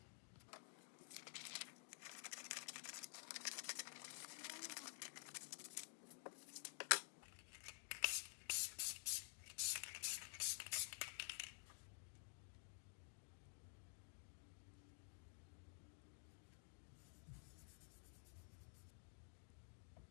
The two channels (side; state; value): right; silent; digital silence